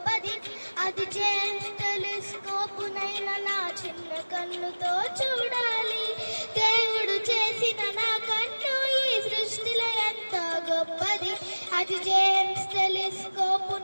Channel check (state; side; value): inverted; both; correlation -1.00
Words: అది జేమ్స్ టెలిస్కోపునైనా నా చిన్న కన్నుతో చూడాలి. దేవుడు చేసిన నా కన్ను ఈ సృష్టిలో ఎంతో గొప్పది. అది జేమ్స్